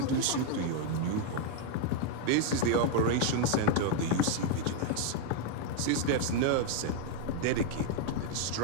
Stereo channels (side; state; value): both; different; correlation 0.00